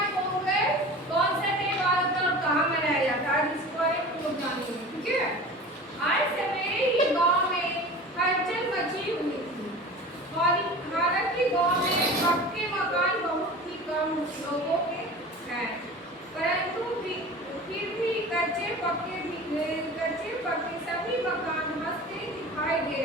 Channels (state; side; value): normal; both; correlation 0.37